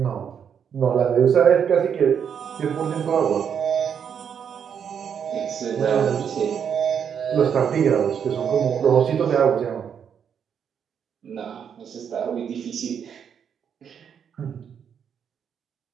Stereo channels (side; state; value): left; quieter; 7.7 dB